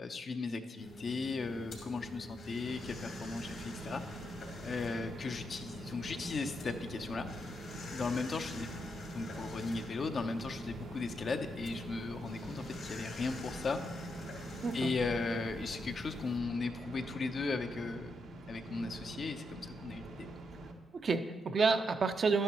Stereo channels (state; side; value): normal; both; correlation 0.81